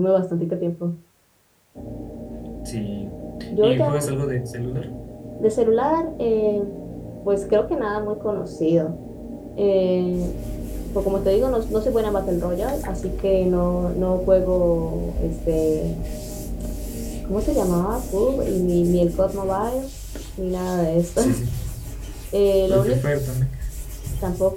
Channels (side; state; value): both; identical; correlation 1.00